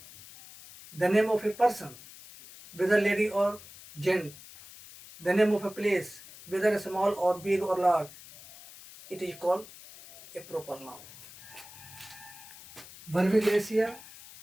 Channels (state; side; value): noise; left; hiss, 18 dB below the sound